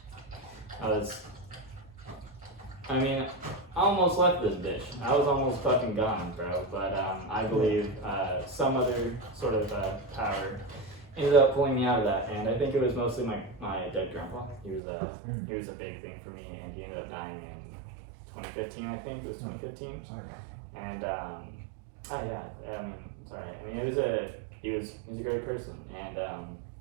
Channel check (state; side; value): drops out; left; at 14.8 s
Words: I almost left this bitch. I was almost fucking gone, bro. But I believe some other sort of power ended up pulling me out of that, and I think it was mostly my dead grandpa. He was a big thing for me, and he ended up dying in 2015. I think it was 2015. And sorry. He was a great person, and